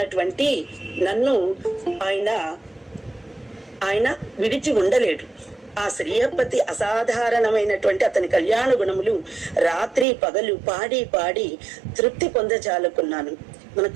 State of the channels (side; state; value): left; drops out; at 10.1 s